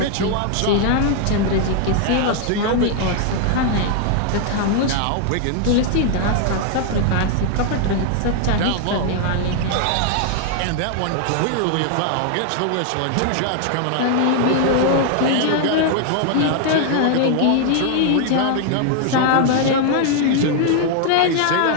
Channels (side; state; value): both; different; correlation 0.00